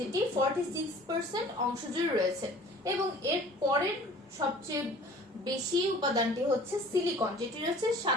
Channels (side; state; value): both; normal; correlation 0.48